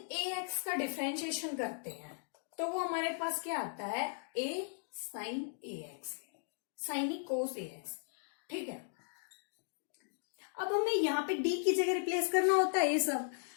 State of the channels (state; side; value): silent; right; digital silence